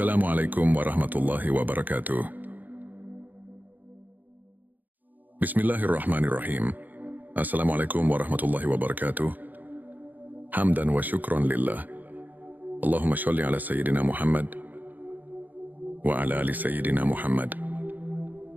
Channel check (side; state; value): left; late; 0.084 ms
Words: warahmatullahi wabarakatuh. Bismillahirrahmanirrahim. Assalamualaikum warahmatullahi wabarakatuh. Hamdan wa syukron lillah. Allahumma sholli ala Sayyidina Muhammad wa ala ali Sayyidina Muhammad.